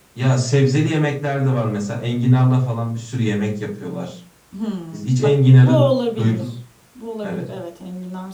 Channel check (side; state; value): both; identical; correlation 1.00